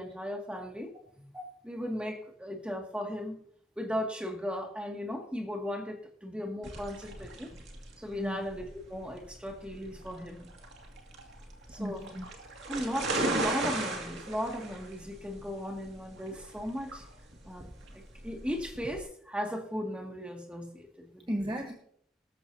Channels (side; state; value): both; normal; correlation 0.67